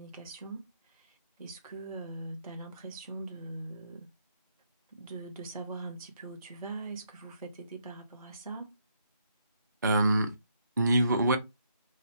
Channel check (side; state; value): both; inverted; correlation -0.74